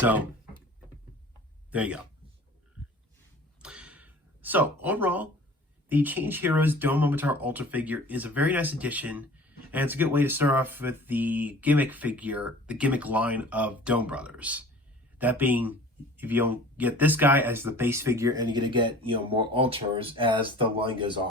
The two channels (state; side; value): normal; both; correlation 0.45